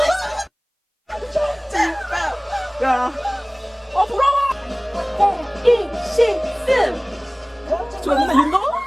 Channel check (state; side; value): identical; both; correlation 1.00